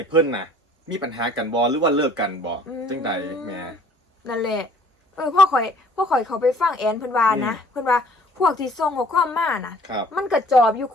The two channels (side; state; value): both; normal; correlation 0.55